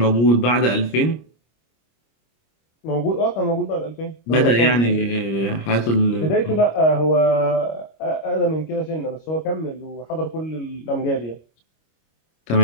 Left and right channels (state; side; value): late; right; 25 ms